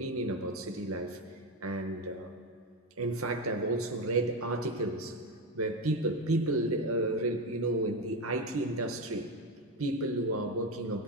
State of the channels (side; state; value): both; normal; correlation 0.15